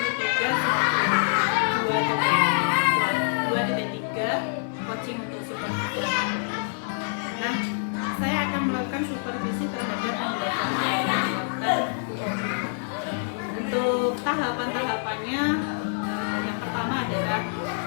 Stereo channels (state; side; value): silent; right; 61 dB below the other